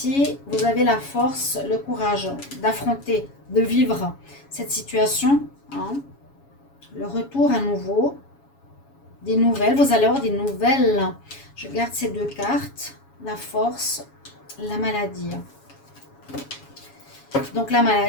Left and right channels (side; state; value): right; late; 7.2 ms